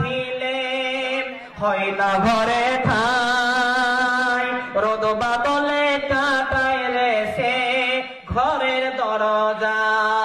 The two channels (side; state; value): both; identical; correlation 1.00